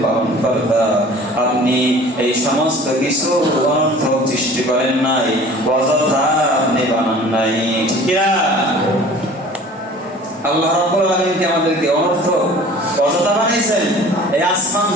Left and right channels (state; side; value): normal; both; correlation 0.46